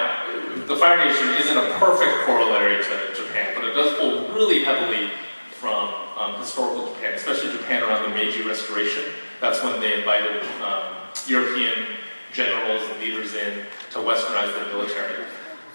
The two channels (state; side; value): inverted; both; correlation -1.00